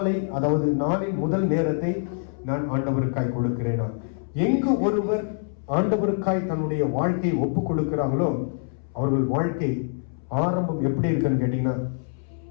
அதாவது நாளின் முதல் நேரத்தை நான் ஆண்டவருக்காய் கொடுக்கிறேனா? எங்கு ஒருவர் ஆண்டவருக்காய் தன்னுடைய வாழ்க்கையை ஒப்பு கொடுக்கிறாங்களோ, அவர்கள் வாழ்க்கை ஆரம்பம் எப்படி இருக்குன்னு கேட்டீங்கன்னா,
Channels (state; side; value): silent; right; 62 dB below the other